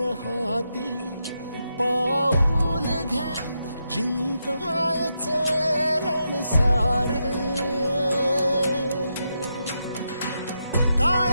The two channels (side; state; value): both; inverted; correlation -0.84